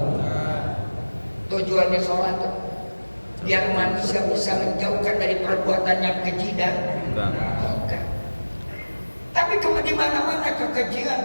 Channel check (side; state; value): both; inverted; correlation -1.00